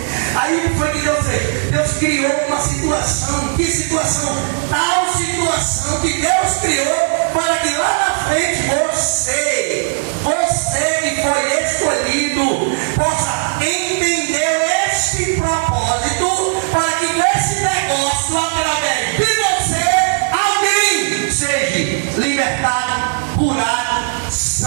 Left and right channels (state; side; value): silent; left; digital silence